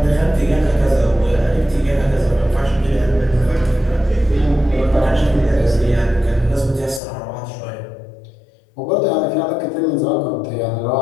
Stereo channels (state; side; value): drops out; right; at 7.0 s